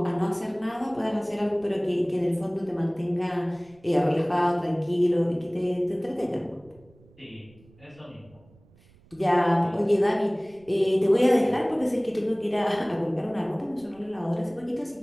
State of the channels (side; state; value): right; noise; rumble, 28 dB below the sound